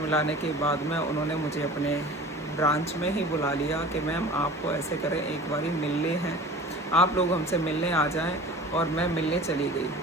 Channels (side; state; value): both; normal; correlation 0.41